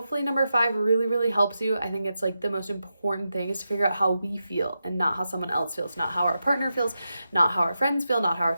number 5 really, really helps you. I think it's like the most important thing is to figure out how we feel and not how someone else feels, not how our partner feels, not how our friends feel, not how our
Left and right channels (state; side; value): inverted; both; correlation -0.88